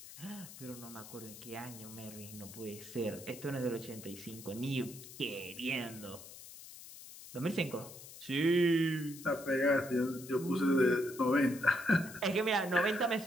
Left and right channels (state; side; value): noise; left; hiss, 15 dB below the sound